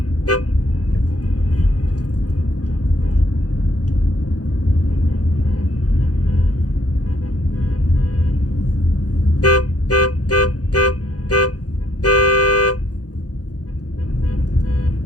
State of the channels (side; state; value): right; late; 0.68 ms